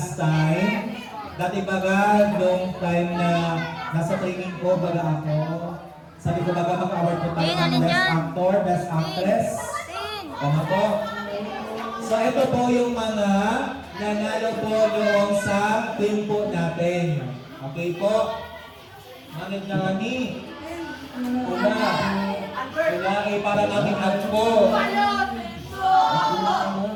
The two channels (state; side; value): identical; both; correlation 1.00